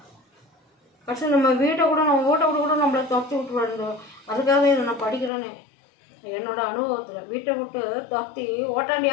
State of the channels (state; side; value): drops out; right; at 5.3 s